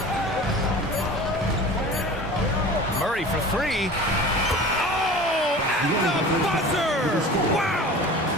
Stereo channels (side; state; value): both; normal; correlation 0.38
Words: Murray for three. Oh, at the buzzer! Wow!